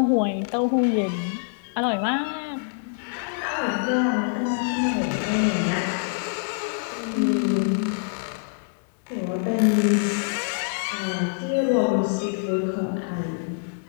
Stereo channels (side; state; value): right; silent; 62 dB below the other